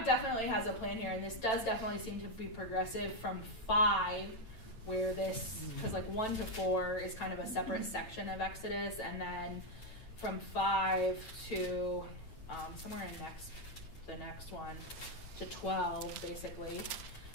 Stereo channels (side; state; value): right; late; 9.0 ms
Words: definitely has a plan here, and this does definitely seem to be progressive from 5, where this, because 1 to 4 is kind of a separate section of Exodus, and then from 5 to somewhere in the next one to 12, basically,